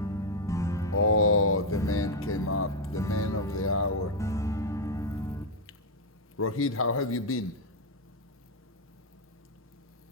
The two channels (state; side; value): normal; both; correlation 0.01